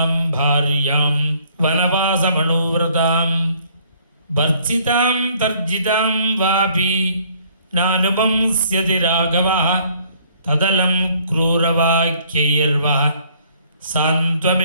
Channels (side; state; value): both; inverted; correlation -0.61